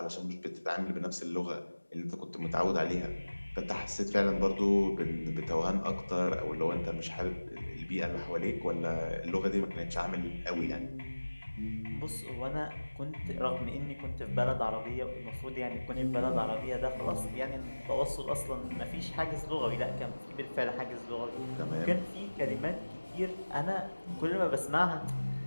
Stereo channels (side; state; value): both; inverted; correlation -1.00